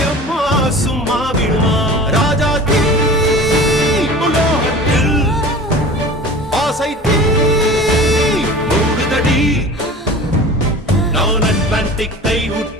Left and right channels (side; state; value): both; normal; correlation 0.38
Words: எம்மா சும்மா விடுமா ராஜா தீ உலோகத்தில் ஆசை தீ மூடுதடி நான் அட்லாண்டிக்கை